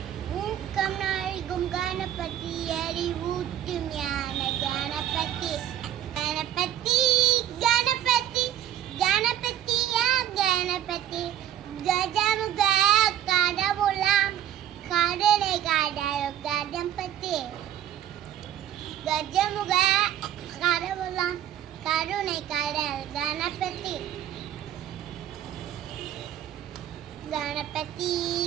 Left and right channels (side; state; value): left; quieter; 11.1 dB